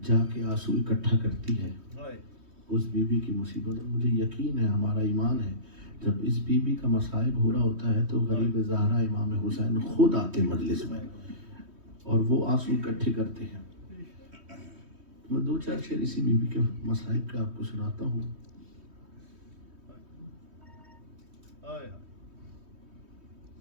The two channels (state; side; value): late; left; 3.2 ms